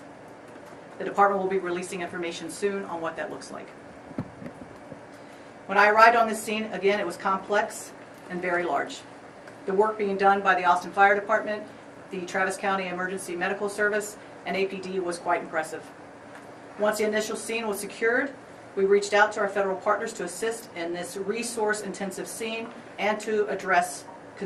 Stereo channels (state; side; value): identical; both; correlation 1.00